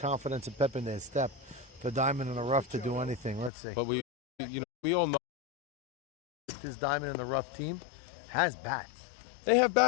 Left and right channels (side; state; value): right; drops out; at 3.5 s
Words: and pep in their step for Diamond in the Rough to do anything. Let's see. But we all know this Diamond in the Rough team has bats. they have